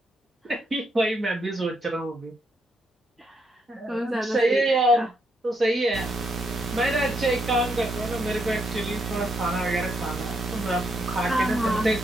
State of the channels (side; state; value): both; normal; correlation 0.77